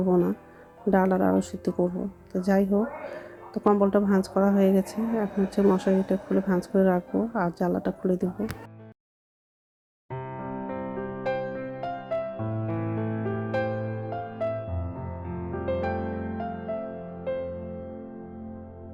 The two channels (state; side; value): identical; both; correlation 1.00